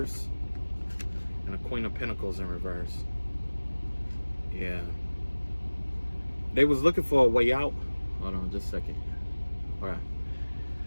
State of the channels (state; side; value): inverted; both; correlation -1.00